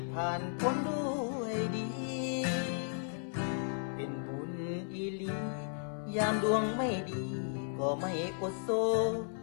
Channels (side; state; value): right; silent; 54 dB below the other